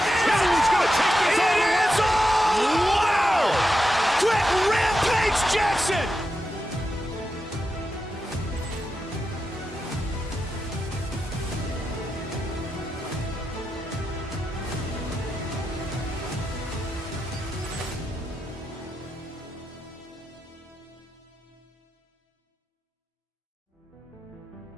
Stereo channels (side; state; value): both; normal; correlation 0.88